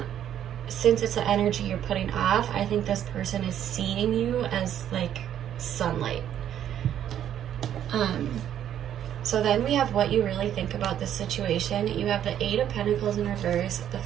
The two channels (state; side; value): quieter; left; 10.4 dB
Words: since it's the energy you're putting off, I think this person is seeing you as like sunlight. So then we have what you really think about this situation. You have the 8 of Pentacles in reverse, the